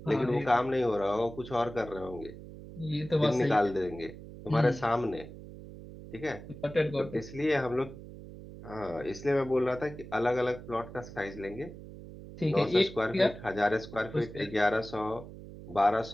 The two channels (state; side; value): noise; right; hum, 14 dB below the sound